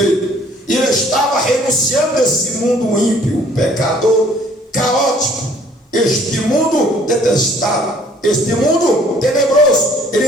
E ele estava renunciando a esse mundo ímpio, pecador, caótico, este mundo detestável, este mundo tenebroso. Ele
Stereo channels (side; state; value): both; normal; correlation 0.58